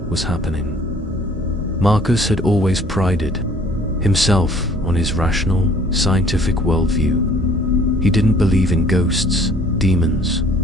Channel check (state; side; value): normal; both; correlation 0.55